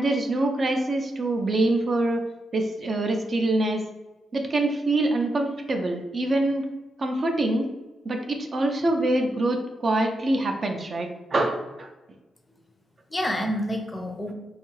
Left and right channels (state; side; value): normal; both; correlation 0.85